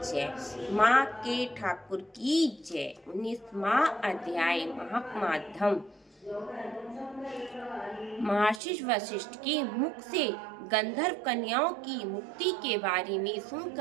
माँ के ठाकुर की जय। 19वां अध्याय महात्माधम। महर्षि वशिष्ठ के मुख से गंधर्व कन्याओं की मुक्ति के बारे में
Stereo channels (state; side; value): drops out; left; at 8.6 s